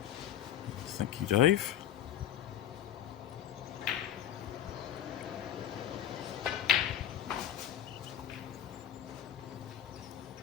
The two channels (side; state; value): right; quieter; 10.5 dB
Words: Thank you, Dave.